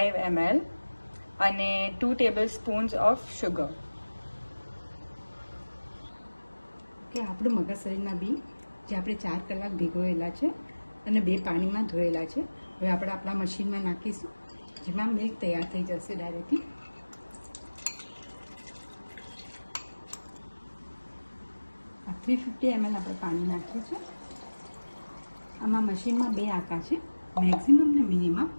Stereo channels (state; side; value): inverted; both; correlation -1.00